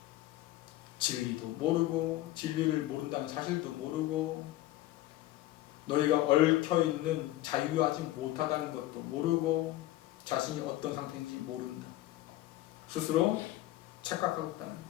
진리도 모르고 진리를 모른다는 사실도 모르고 너희가 얽혀있는 자유하지 못하다는 것도 모르고 자신이 어떤 상태인지 모른다. 스스로 착각하고 있다는 거예요.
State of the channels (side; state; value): right; quieter; 15.8 dB